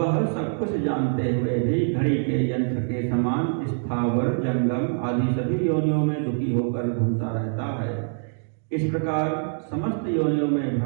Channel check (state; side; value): silent; left; digital silence